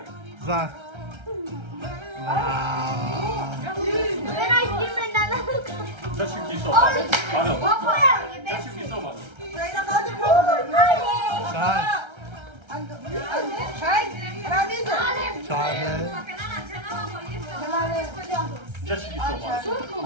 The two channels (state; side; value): late; left; 1.3 ms